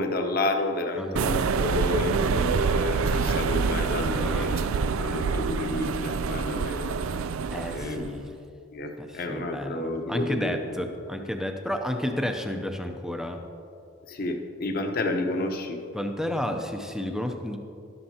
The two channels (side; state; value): both; normal; correlation 0.41